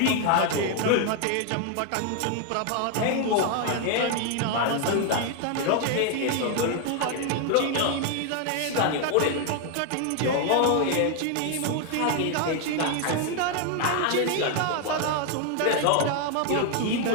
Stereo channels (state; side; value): different; both; correlation 0.00